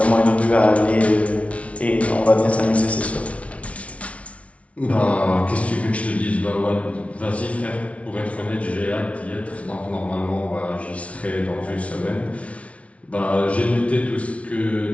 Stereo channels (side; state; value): right; late; 0.064 ms